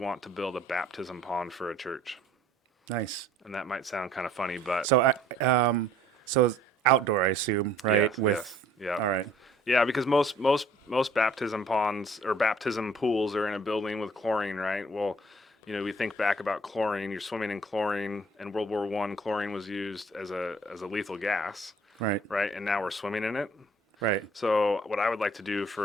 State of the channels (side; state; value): both; normal; correlation 0.56